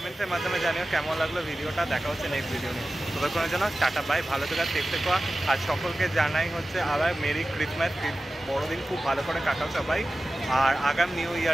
মাধ্যমে জানিও কেমন লাগলো ভিডিওটা। দেখা হচ্ছে নেক্সট ভিডিও নিয়ে। ততক্ষণের জন্য টাটা বাই, ভালো থেকো, সেফ থেকো। আর সকলকে জানাই হচ্ছে আবার মেরি ক্রিসমাস, বড়দিন খুব ভালো করে কাটাও সবাই। আর আগাম নিউ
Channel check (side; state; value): both; normal; correlation 0.95